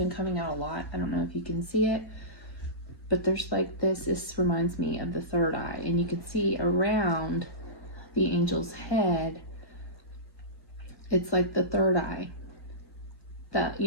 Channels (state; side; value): late; right; 1.2 ms